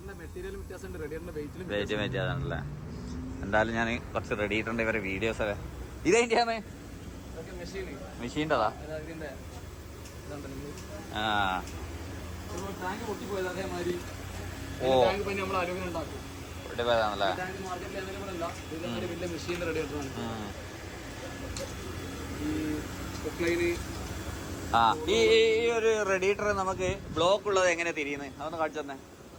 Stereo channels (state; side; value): identical; both; correlation 1.00